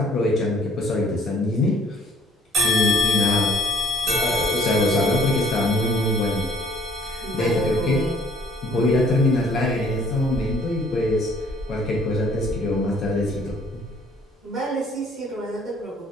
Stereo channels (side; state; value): both; normal; correlation 0.59